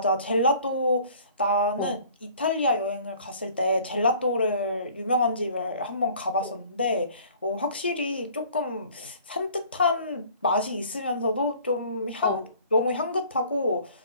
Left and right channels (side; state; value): both; inverted; correlation -0.51